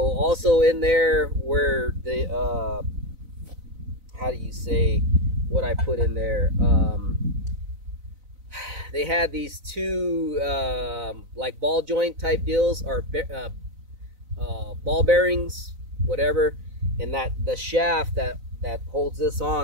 in there where the how do you say what I put in there? They had these two like ball joint type deals, or ball bearings, whatever, and that the shaft that holds this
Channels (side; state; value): left; late; 4.0 ms